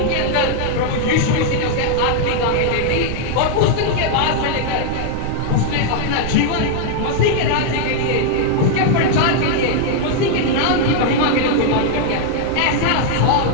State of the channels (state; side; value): different; both; correlation 0.00